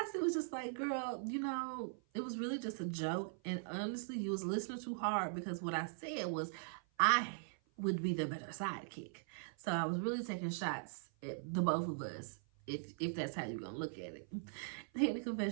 was just like, girl, you know, it was really just a joke. And honestly, you was listening too hard, because what I said was I would be the better sidekick. So I was really taking shots at the both of us, if that's how you're going to look at it. They in the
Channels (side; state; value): left; silent; 51 dB below the other